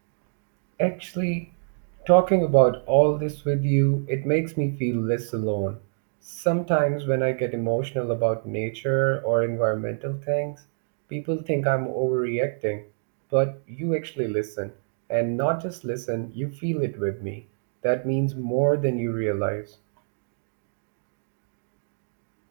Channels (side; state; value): left; silent; digital silence